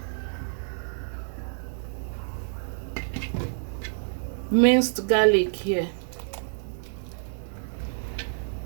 minced garlic here.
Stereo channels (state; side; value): silent; left; digital silence